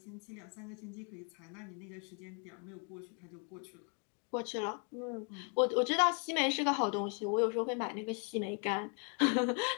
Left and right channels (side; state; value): right; quieter; 37.7 dB